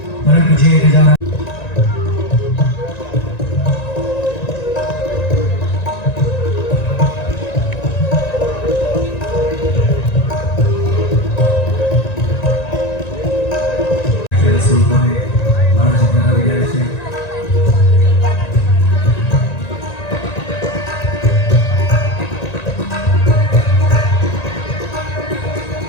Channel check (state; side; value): late; right; 1.9 ms